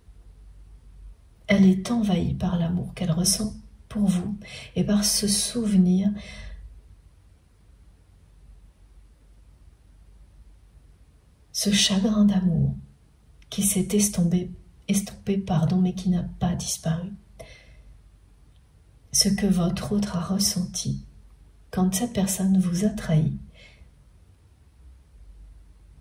», elle est envahie par l'amour qu'elle ressent pour vous et par ce souvenir ce chagrin d'amour qui s'est estompé, mais qui n'a pas disparu. Ce que votre autre a ressenti quand cette personne vous a trahi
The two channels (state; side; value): identical; both; correlation 1.00